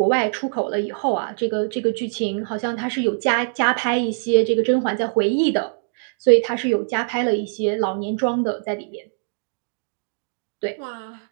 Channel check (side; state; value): left; silent; digital silence